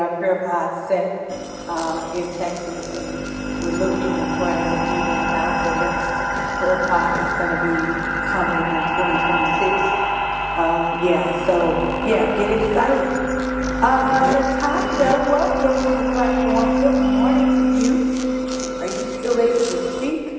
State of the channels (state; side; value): identical; both; correlation 1.00